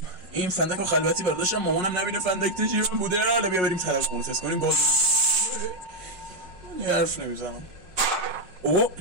این فندک رو خلوتی برداشتم، مامانم نبینه فندک تجیب بوده. حالا بیا بریم ترقه رو تست کنیم. گاز حرف نمیزنم. اوه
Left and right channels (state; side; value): late; left; 5.4 ms